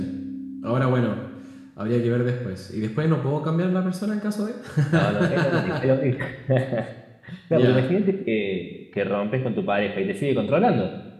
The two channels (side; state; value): both; identical; correlation 1.00